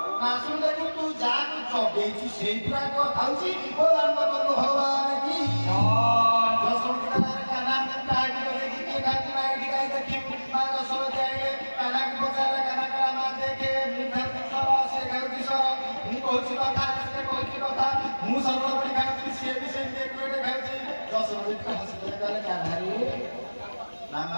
ନାଶୁଣି ଦେଖୁ ତୁ ଯାହାକୁ ଜଗେଇଛୁ ସେଇ ପୁରା ଖାଉଛି ଓ ରାମଚନ୍ଦ୍ର ଭଗବାନ କି ଦଶମୀ କାହ୍ନା କାହାକୁ ଜଗେଇକି କିଏ ଖାଉଛି ନା ଏଠି କାହିଁ ଦେଖିବୁ ମା ଦଶମୀ ଆଇଲେ କାହ୍ନାକୁ ପଚାରିଲେ କାହ୍ନା କହିଲା ମା ଦେଖେ ମୁଁ ଖାଉଛି ସର ସେ ଖାଉଛି ସର ମୁଁ କହୁଛି କଥା ସେ କହୁଛି କଥା ମୁଁ ସରଳବଣୀ ଖାଉଛି ସିଏ ବି ସେମିତି ଏକୁଟେ ଖାଉଛି। ଦଶମୀ ହସିଲେ କହିଲେ କାହ୍ନାରେ ନା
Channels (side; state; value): both; inverted; correlation -1.00